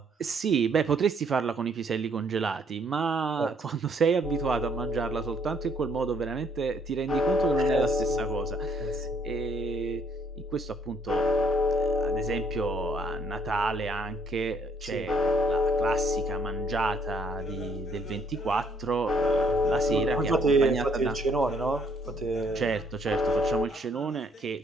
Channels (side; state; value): both; normal; correlation 0.66